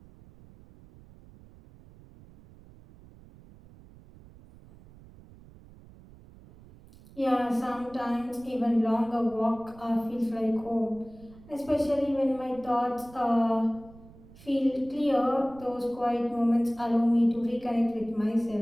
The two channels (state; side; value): noise; right; rumble, 22 dB below the sound